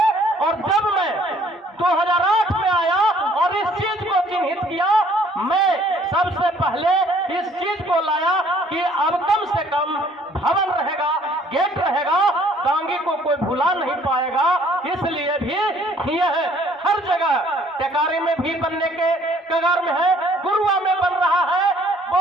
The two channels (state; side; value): normal; both; correlation 0.60